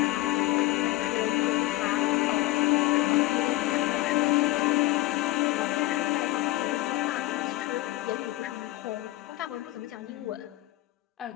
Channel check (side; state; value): right; quieter; 17.6 dB